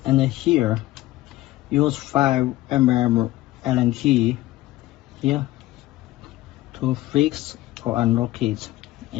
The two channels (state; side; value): quieter; right; 16.7 dB